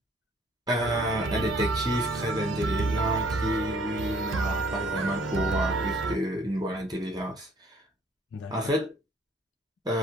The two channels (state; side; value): normal; both; correlation 0.59